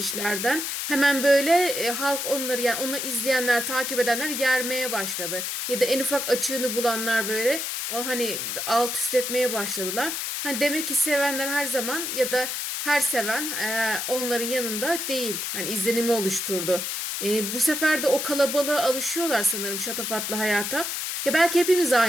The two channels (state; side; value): noise; left; hiss, 3 dB below the sound